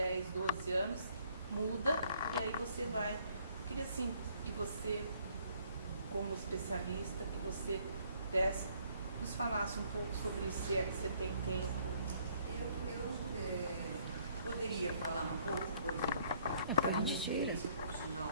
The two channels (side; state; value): both; inverted; correlation -0.64